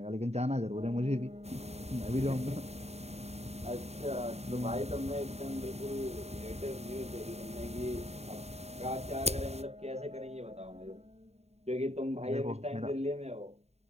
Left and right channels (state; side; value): late; left; 0.31 ms